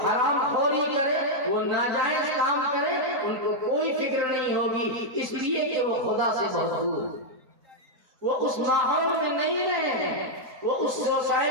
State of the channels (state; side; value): late; left; 3.9 ms